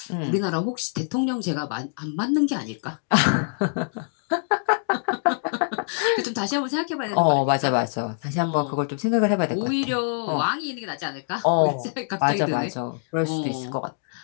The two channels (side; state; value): right; silent; 61 dB below the other